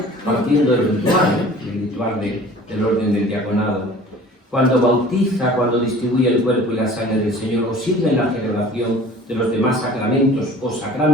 partiendo del ritual del orden del diaconado. Cuando bautiza, cuando distribuye el cuerpo y la sangre del Señor, o sirve en la celebración de los demás sacramentos o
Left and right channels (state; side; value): normal; both; correlation 0.46